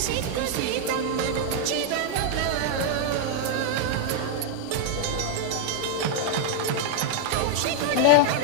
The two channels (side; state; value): both; different; correlation 0.00